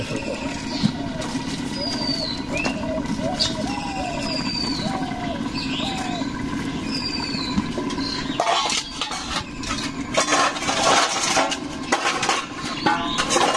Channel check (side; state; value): both; identical; correlation 1.00